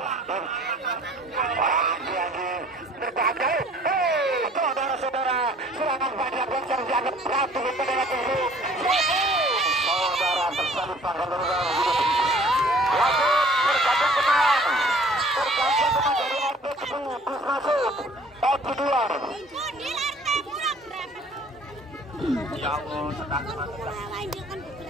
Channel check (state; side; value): normal; both; correlation 0.53